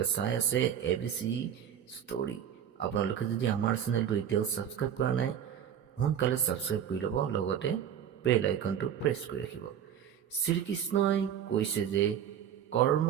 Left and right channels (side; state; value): left; quieter; 9.3 dB